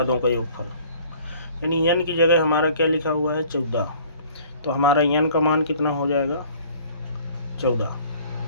का योगफल। यानी n की जगह हमारा क्या लिखा हुआ है 14, तो हमारा n का मान कितना हो जाएगा 14।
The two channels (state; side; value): inverted; both; correlation -0.53